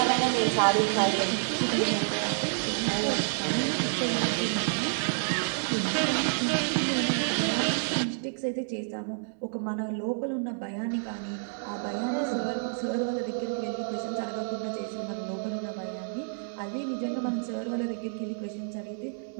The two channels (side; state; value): left; silent; digital silence